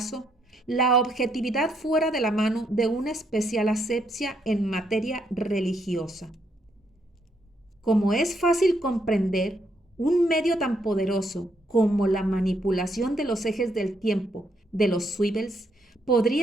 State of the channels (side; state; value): both; normal; correlation 0.75